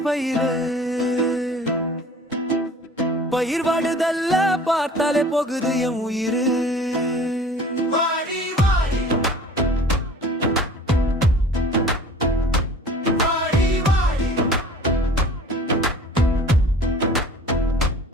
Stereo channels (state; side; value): normal; both; correlation 0.45